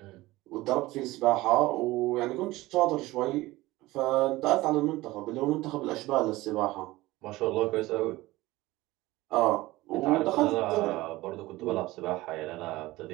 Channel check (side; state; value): left; quieter; 18.8 dB